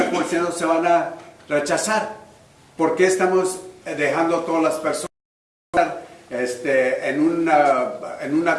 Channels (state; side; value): identical; both; correlation 1.00